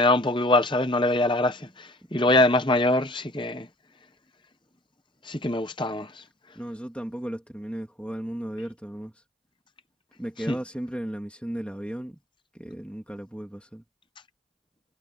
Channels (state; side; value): normal; both; correlation 0.51